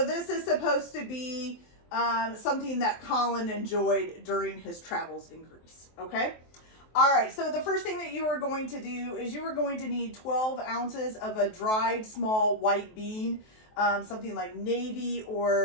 this is supposed to be something that Colin enjoyed during his travels in Greece, okay? All right, so the first thing that you are going to do is you are going to need 12 ounces of a dried small white bean, something like navy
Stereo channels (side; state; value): right; late; 23 ms